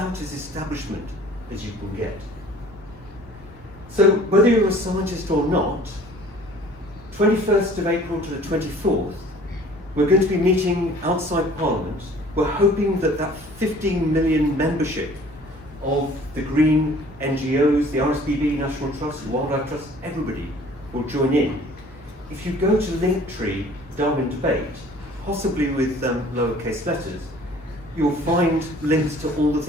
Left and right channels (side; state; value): both; normal; correlation 0.51